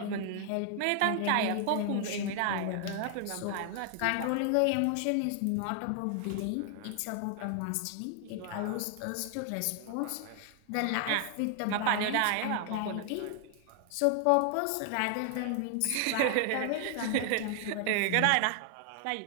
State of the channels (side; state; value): both; different; correlation 0.00